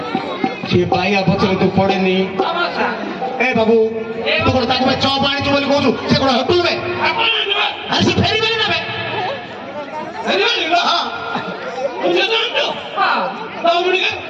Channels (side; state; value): both; identical; correlation 1.00